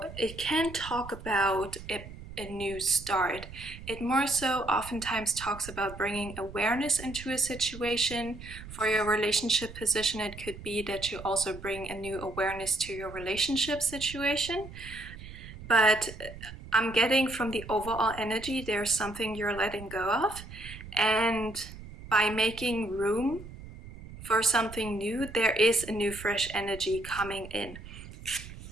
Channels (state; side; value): noise; right; rumble, 14 dB below the sound